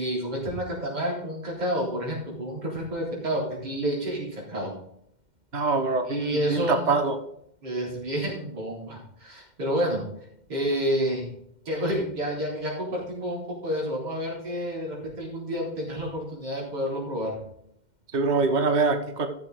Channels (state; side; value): late; left; 2.1 ms